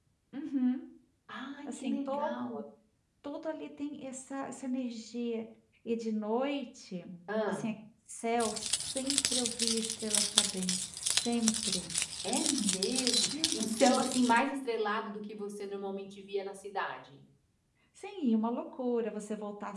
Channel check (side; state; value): both; identical; correlation 1.00